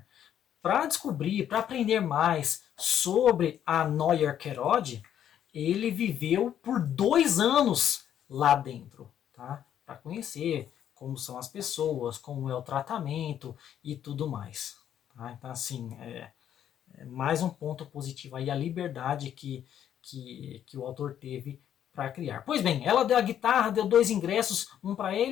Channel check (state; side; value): quieter; right; 10.1 dB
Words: Para descobrir, para aprender mais sobre a Noyer Kerod, ele viveu por 2 anos lá dentro, tá? Para conhecer como são as pessoas, como é o tratamento e tudo mais. Tá? Então, assim, mais um ponto positivo aí, a liberdade que o autor teve para criar. Pois bem, ela deu a guitarra, deu 2 ingressos, um para